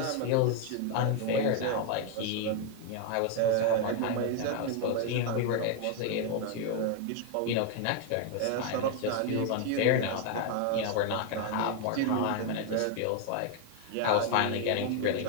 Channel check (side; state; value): both; different; correlation 0.01